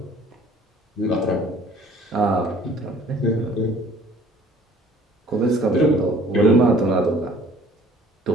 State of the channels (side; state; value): both; normal; correlation 0.53